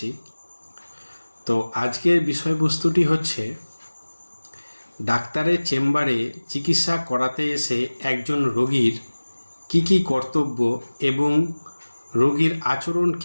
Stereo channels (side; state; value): both; inverted; correlation -1.00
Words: তো আজকের বিষয়বস্তুটি হচ্ছে, ডাক্তারের চেম্বারে চিকিৎসা করাতে এসে একজন রোগীর কি কি কর্তব্য এবং রোগীর আচরণ